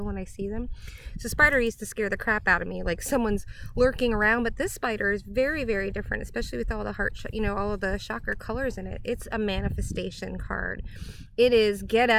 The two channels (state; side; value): identical; both; correlation 1.00